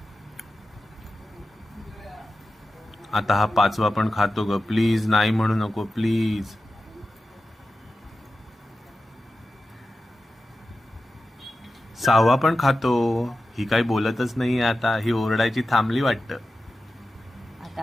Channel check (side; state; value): both; normal; correlation 0.93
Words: आता हा पाचवा पण खातो ग. प्लीज नाही म्हणू नको प्लीज. सहावा पण खातो. ही काही बोलतच नाहीये आता. ही ओरडायची थांबली वाटतं.